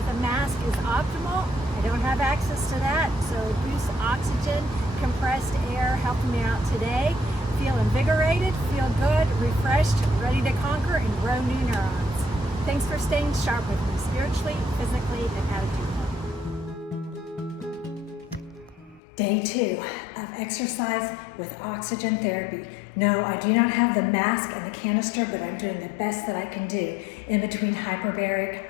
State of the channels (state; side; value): drops out; right; at 19.0 s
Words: a mask is optimal. I don't have access to that, so boost oxygen, compressed air helping me out today. Feel invigorated, feel good, refreshed, ready to conquer and grow new neurons. Thanks for staying sharp with me spiritually, physically, and attitudinally. Day 2 of exercise with oxygen therapy. No, I do not have the mask and the canister, but I'm doing the best that I can do in between hyperbaric